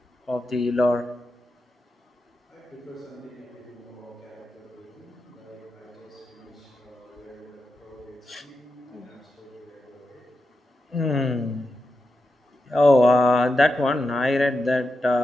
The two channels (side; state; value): both; normal; correlation 0.89